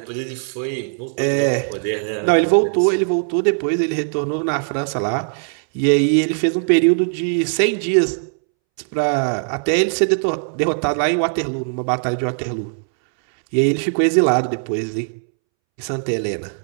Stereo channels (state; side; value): silent; left; 66 dB below the other